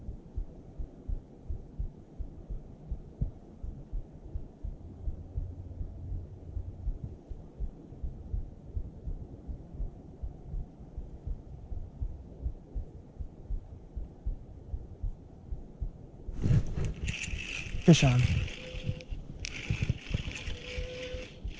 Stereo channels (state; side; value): identical; both; correlation 1.00